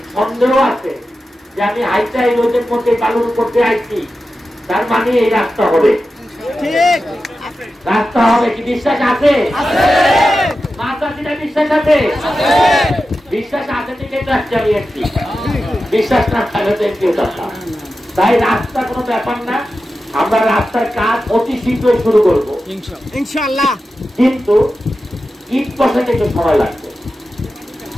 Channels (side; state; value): both; normal; correlation 0.92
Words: সন্দেহ আছে যে আমি হাইটা এই রোদের মধ্যে বালুর করতে আইছি, তার মানে এই রাস্তা হবে। রাস্তা হবে কি বিশ্বাস আছে? বিশ্বাস আছে? বিশ্বাস আছে থেকে চালিয়েছি, বিশ্বাস না থাকলে তো কেউ থাকতাম। তাই রাস্তা কোনো ব্যাপার না, আমরা রাস্তার কাজ অতি শীঘ্রই শুরু করবো ইনশাআল্লাহ। কিন্তু ইট বসাতে একটু সময় লাগবে।